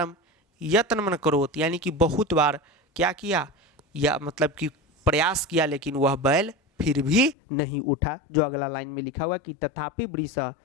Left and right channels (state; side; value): drops out; right; at 7.4 s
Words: यत्न मन करोत यानी कि बहुत बार क्या किया, या मतलब कि प्रयास किया, लेकिन वह बैल फिर भी नहीं उठा। जो अगला लाइन में लिखा हुआ कि तथापि वृष